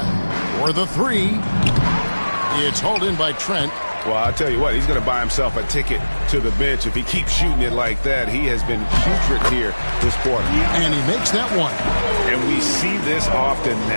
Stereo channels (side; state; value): both; inverted; correlation -1.00